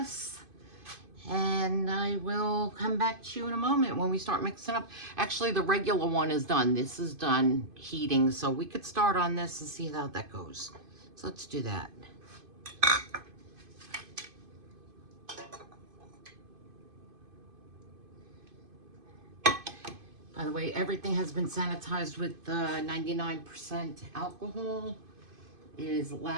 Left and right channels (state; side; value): late; left; 2.5 ms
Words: And I will come back to you in a moment when we start mixing up. Actually, the regular one is done. This is done heating, so we could start on this and see how that goes. So let's do that. By the way, everything has been sanitized with 99% alcohol. It is